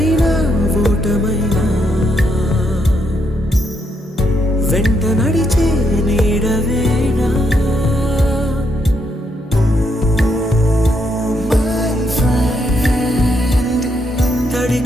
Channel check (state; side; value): normal; both; correlation 0.77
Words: ఓటమైనా వెంట నడిచే నీడవేనా తడి